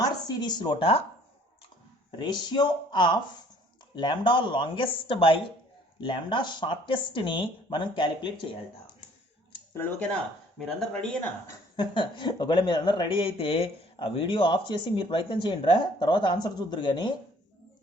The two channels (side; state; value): both; normal; correlation 0.57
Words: series లోట ratio of lambda longest by lambda షార్టెస్ట్ని మనం calculate చేయాలట పిల్లలు, ఓకేనా? మీరందరూ రెడీయేనా? ఒకవేళ మీరందరూ రెడీ అయితే ఆ వీడియో ఆఫ్ చేసి మీరు ప్రయత్నం చేయండి రా, తర్వాత ఆన్సర్ చూద్దరు కానీ